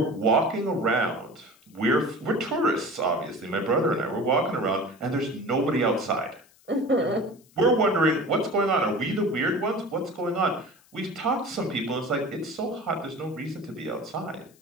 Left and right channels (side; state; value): left; noise; hiss, 30 dB below the sound